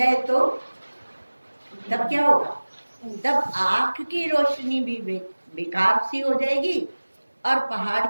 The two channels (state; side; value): inverted; both; correlation -1.00